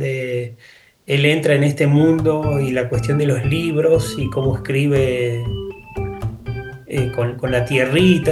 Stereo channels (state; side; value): identical; both; correlation 1.00